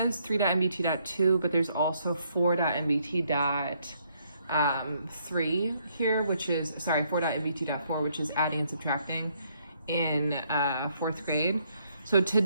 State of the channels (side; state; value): both; inverted; correlation -0.71